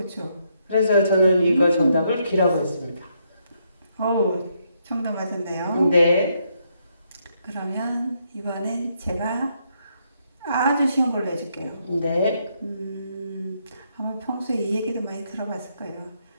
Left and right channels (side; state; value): both; inverted; correlation -0.76